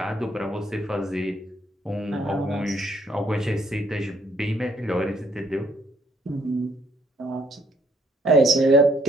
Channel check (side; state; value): both; normal; correlation 0.67